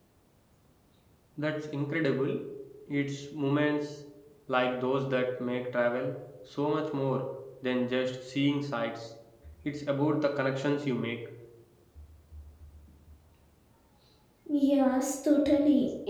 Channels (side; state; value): both; identical; correlation 1.00